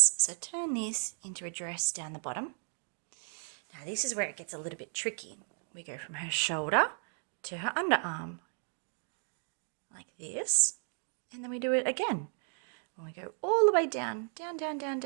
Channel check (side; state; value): left; silent; 55 dB below the other